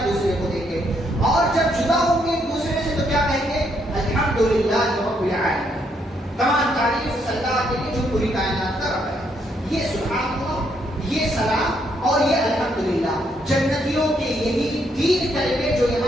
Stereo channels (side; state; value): both; normal; correlation 0.74